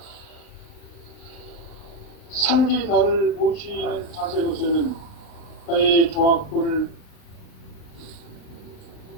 상제인 나를 모시는 자세로서는 나의 조합권을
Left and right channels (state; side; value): late; right; 39 ms